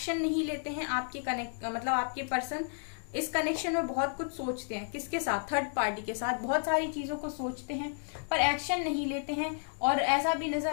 नहीं लेते हैं। आपके मतलब आपके पर्सन इस कनेक्शन में बहुत कुछ सोचते हैं, किसके साथ, थर्ड पार्टी के साथ, बहुत सारी चीजों को सोचते हैं पर एक्शन नहीं लेते हैं। और ऐसा भी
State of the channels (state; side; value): silent; right; digital silence